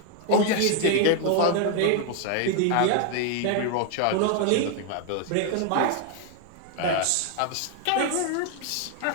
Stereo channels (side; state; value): both; different; correlation 0.01